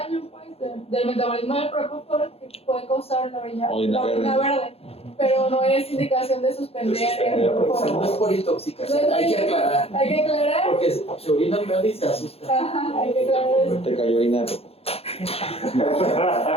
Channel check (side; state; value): right; late; 0.29 ms